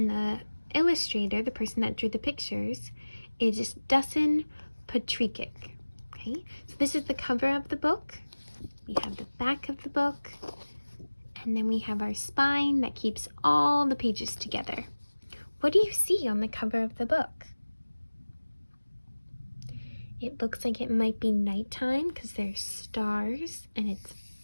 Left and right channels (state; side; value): inverted; both; correlation -1.00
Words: the illustrator, the person that drew the pictures, is Dusan Patrikic. Okay, so this is the cover of the book. We have the back of the book, and then we have our spine that keeps all the pages together. What do you see on the cover of the book? It looks like it might be nighttime because there's stars and it's